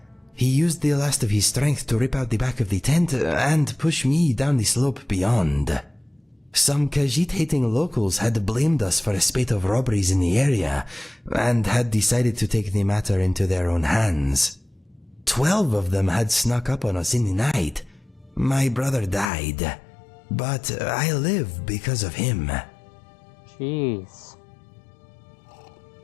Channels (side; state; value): right; drops out; at 19.3 s